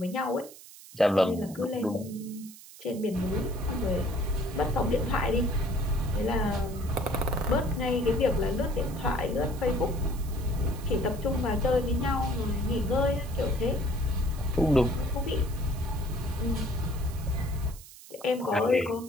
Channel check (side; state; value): right; noise; hiss, 18 dB below the sound